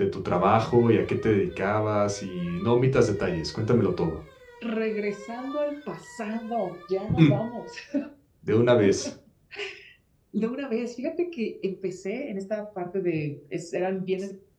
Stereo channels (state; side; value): identical; both; correlation 1.00